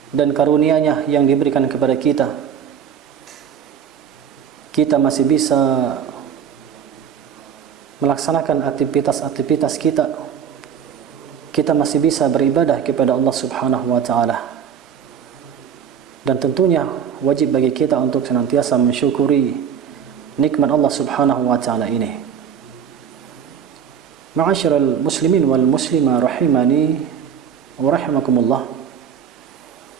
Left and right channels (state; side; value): quieter; left; 8.2 dB